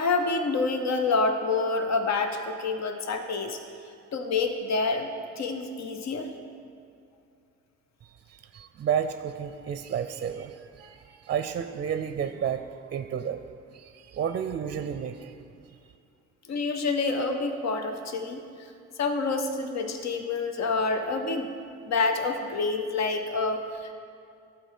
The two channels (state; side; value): normal; both; correlation -0.08